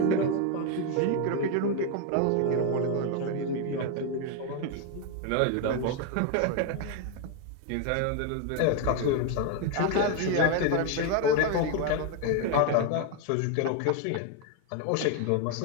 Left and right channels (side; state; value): both; different; correlation 0.01